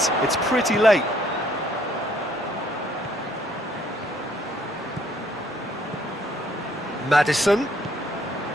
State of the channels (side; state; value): both; normal; correlation 0.64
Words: pretty late. Maddison.